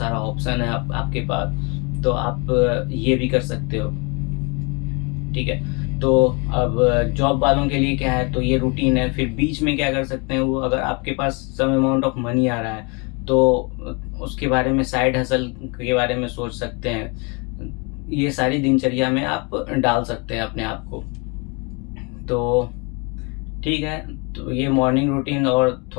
ऑप्शन है आपके पास, तो आप ये भी कर सकते हो। ठीक है, तो अब जॉब वालों के लिए क्या है, तो ये रूटीन है। फिर बीच में क्या कर सकते हैं वो, अगर आपके पास सम अमाउंट ऑफ मनी आ रहा है तो उसके बारे में, साइड हसल के बारे में सोच सकते हैं। ये सारी दिनचर्या में आप डाल सकते हैं अपने आप को। तो ठीक है, तो ये मॉर्निंग रूटीन और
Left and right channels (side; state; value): right; quieter; 31.5 dB